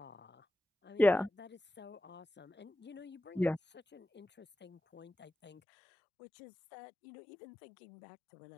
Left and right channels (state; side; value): drops out; right; at 5.6 s